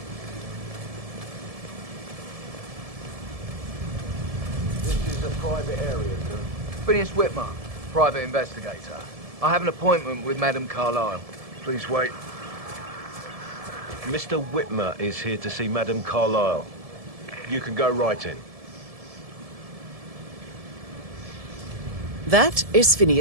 Phineas Whitmer, private investigator. I have an appointment with Madame Carlyle. Please wait. Mr. Whitmer is here to see Madame Carlyle. You can go right in. That is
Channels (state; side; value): late; left; 1.7 ms